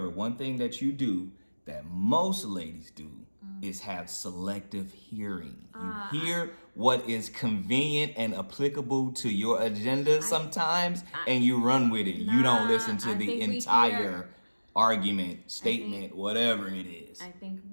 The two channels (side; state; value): both; inverted; correlation -1.00